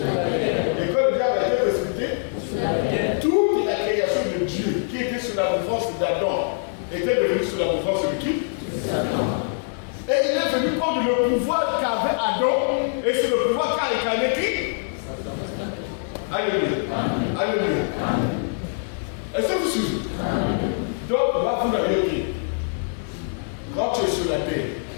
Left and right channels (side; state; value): right; silent; 63 dB below the other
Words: quand le diable a été précipité, toute la création de Dieu qui était sous la mouvance d'Adam était devenue sous la mouvance de qui? Et il est venu prendre le pouvoir qu'avait Adam, et c'est le pouvoir qu'a incarné qui? Alléluia. Alléluia. Est-ce que vous suivez? Donc, là, vous l'avez dit. Quand tu es sur la terre,